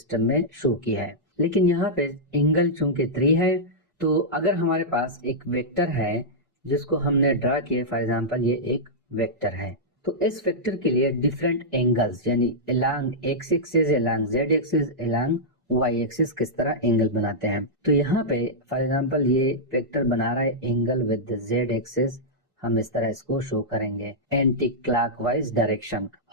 में शो किया है। लेकिन यहाँ पे एंगल चूंकि 3 है तो अगर हमारे पास एक वेक्टर है जिसको हमने ड्रा किया, फॉर एग्जांपल ये एक वेक्टर है, तो इस वेक्टर के लिए डिफरेंट एंगल्स यानी along X axis, along Z axis, along Y axis किस तरह एंगल बनाते हैं। तो यहाँ पे फॉर एग्जांपल ये वेक्टर बना रहा है एंगल विद जेड एक्सिस। हम इस तरह इसको शो करेंगे एंटी क्लॉकवाइज डायरेक्शन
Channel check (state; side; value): normal; both; correlation -0.10